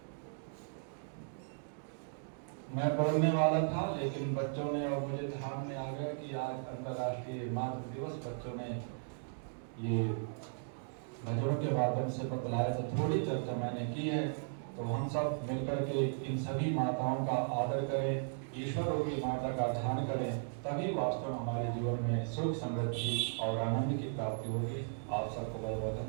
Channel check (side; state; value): left; silent; digital silence